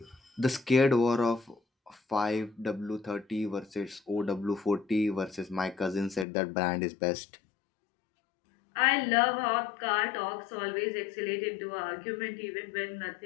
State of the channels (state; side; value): drops out; right; at 6.2 s